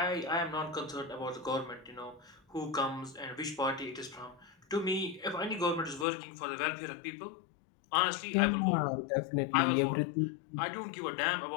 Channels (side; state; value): right; drops out; at 6.1 s